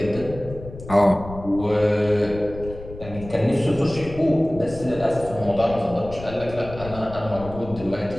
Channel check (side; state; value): left; noise; rumble, 14 dB below the sound